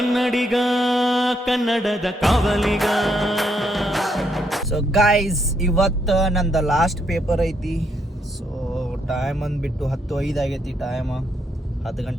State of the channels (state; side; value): normal; both; correlation 0.75